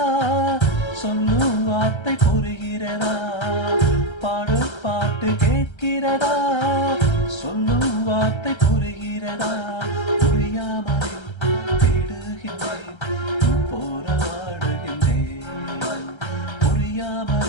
சொல்லும் வார்த்தை புரிகிறதா பாடும் பாட்டு கேட்கிறதா சொல்லும் வார்த்தை புரிகிறதா புரியாமல் தேடுகின்றேன் போராடுகின்றேன்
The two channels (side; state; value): right; late; 1.3 ms